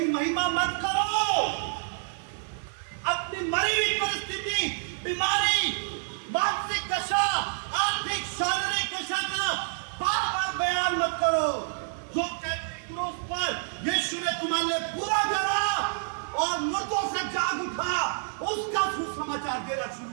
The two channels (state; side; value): silent; left; digital silence